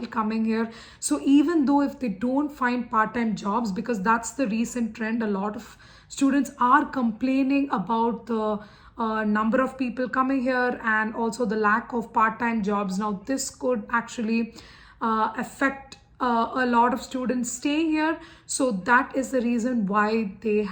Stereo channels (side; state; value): both; identical; correlation 1.00